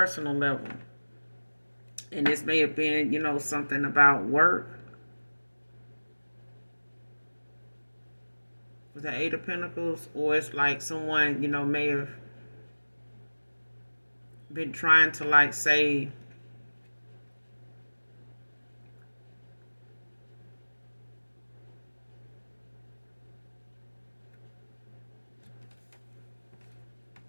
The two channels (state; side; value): inverted; both; correlation -1.00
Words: level. And this may have been, something about work with the Eight of Pentacles, or it's like someone, may have been trying to like say